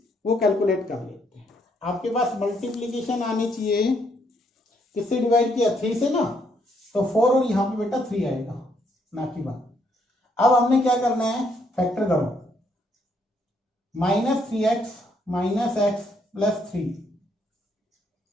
वो कैलकुलेट कर लेते हैं। आपके पास मल्टीप्लीकेशन आनी चाहिए, किससे डिवाइड किया 3 से ना, तो 4 और यहाँ पे बेटा 3 आएगा ना की बात। अब हमने क्या करना है, फैक्टर करो, minus 3x minus x plus 3,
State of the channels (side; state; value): both; normal; correlation 0.72